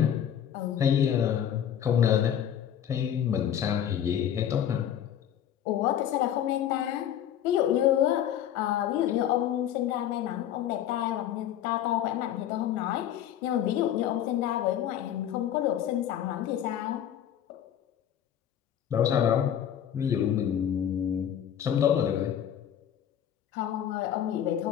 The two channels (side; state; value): right; quieter; 10.2 dB